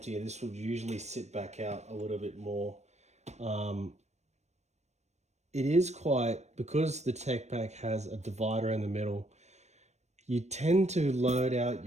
This would usually sit back out a little bit more. It is quite, because the Tech Pac has a divider in the middle, you tend to load out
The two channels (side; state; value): left; late; 0.32 ms